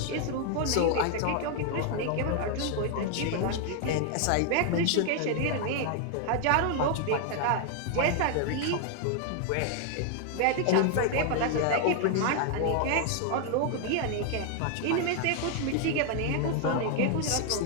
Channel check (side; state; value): both; different; correlation 0.00